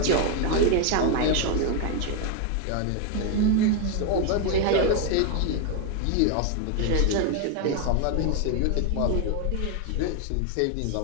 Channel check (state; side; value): different; both; correlation 0.01